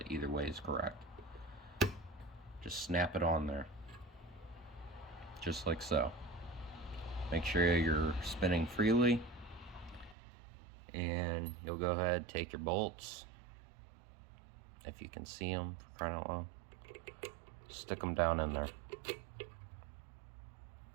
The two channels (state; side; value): drops out; left; at 10.2 s